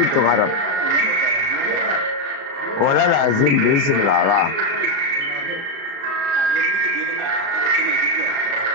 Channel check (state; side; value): late; left; 36 ms